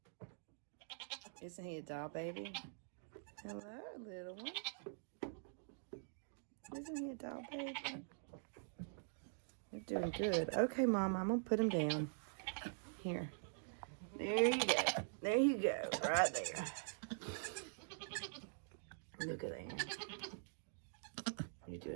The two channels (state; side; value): silent; left; digital silence